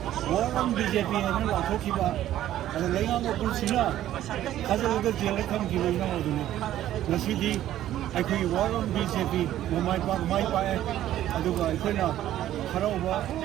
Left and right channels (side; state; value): left; quieter; 12.8 dB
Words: ꯋꯥꯔꯝ BJP ꯍꯥꯏꯅ ꯂꯥꯎꯊꯣꯛꯈꯤꯕ ꯑꯗ ꯂꯩꯉꯥꯛ ꯃꯄꯨꯁꯤꯅ ꯊꯥꯖꯤꯜꯂꯒ ꯖꯦꯜꯗ ꯊꯝꯈꯤꯕ ꯏꯅꯥꯎ ꯑꯗꯨꯅꯤ ꯉꯁꯤꯗꯤ ꯑꯩꯈꯣꯏꯒꯤ ꯋꯥꯔꯝ BJP ꯃꯥꯏ ꯄꯥꯛꯑꯦ ꯑꯗꯨꯒ ꯑꯩꯈꯣꯏꯅ ꯍꯔꯥꯎꯕ